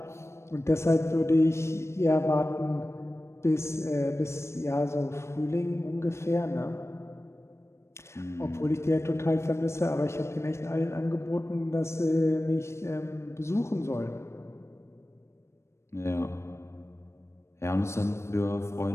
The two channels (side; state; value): right; late; 0.13 ms